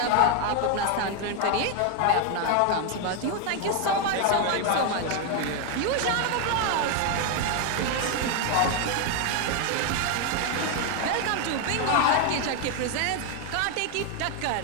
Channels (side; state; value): both; different; correlation 0.01